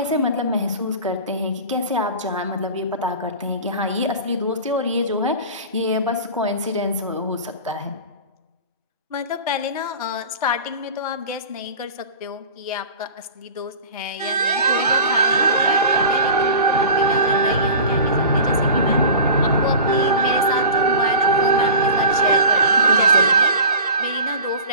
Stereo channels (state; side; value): inverted; both; correlation -0.37